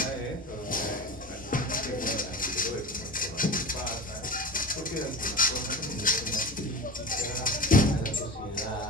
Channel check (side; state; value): both; normal; correlation 0.30